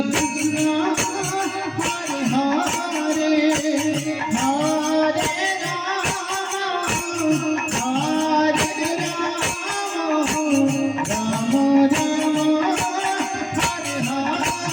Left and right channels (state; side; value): identical; both; correlation 1.00